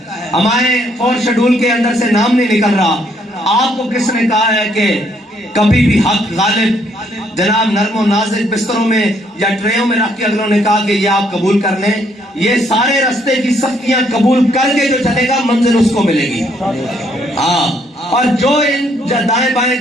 ہمارے 4 شیڈول کے اندر سے نام نہیں نکل رہا۔ آپ کو کس نے کہا ہے کہ کبھی بھی حق غالب جناب نرم و نازک بستروں میں یا ٹریوں میں رکھ کے اگلوں نے کہا کہ یہ آپ قبول کر لیں؟ یہ سارے رستے کی سختیاں قبول کر کے جو چلے گا منزل اس کو ملے گی۔ اور جو ان دائیں بائیں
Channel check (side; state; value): both; normal; correlation 0.69